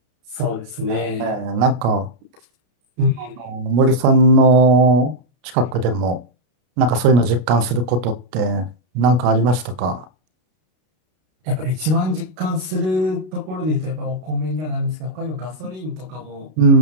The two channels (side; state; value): left; late; 33 ms